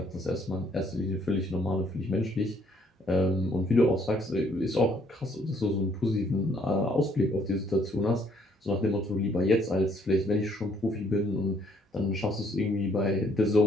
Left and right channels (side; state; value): both; normal; correlation 0.65